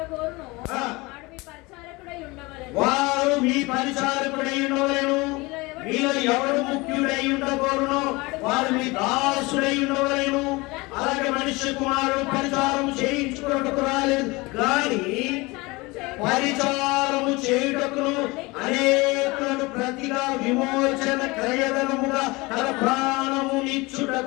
వారు మీ పరిచారకుడై ఉండవలెను. మీలో ఎవడు ముఖ్యుడై ఉండకూడను వారు మీ దాసుడై ఉండవలెను. అలాగే మనుష్య కుమారుడు పరిచారం చేయించుకున్నట్టుకు రాలేదు కానీ పరిచారము చేయుటకును అనేకులను ప్రతిగా విమోచన క్రయధనముగా తన ప్రాణము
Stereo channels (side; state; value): right; quieter; 23.7 dB